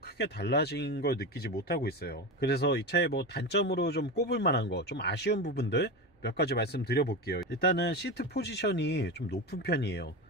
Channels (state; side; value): normal; both; correlation 0.21